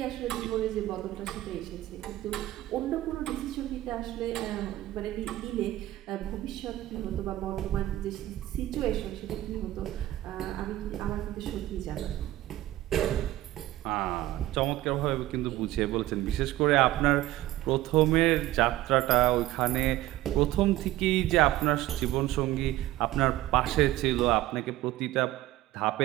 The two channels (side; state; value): left; quieter; 15.5 dB